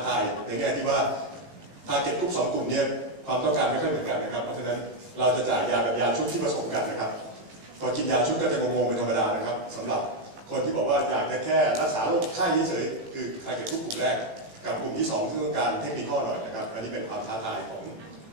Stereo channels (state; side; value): late; left; 18 ms